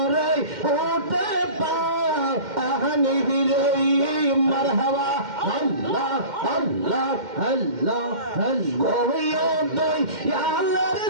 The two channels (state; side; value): late; left; 2.1 ms